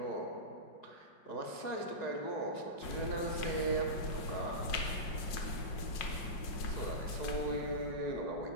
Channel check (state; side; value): late; right; 5.5 ms